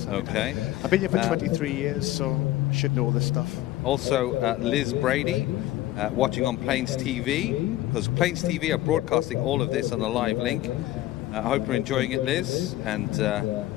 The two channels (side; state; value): right; quieter; 15.4 dB